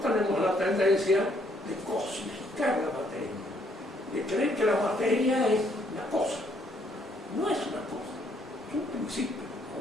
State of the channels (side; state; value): right; noise; rumble, 30 dB below the sound